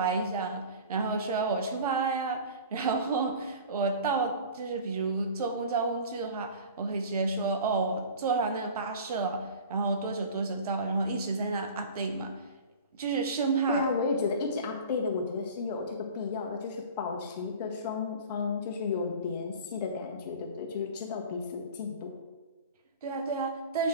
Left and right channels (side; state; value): both; inverted; correlation -0.39